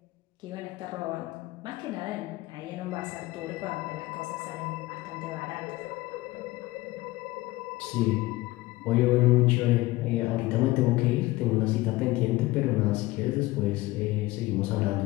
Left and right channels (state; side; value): quieter; right; 19.3 dB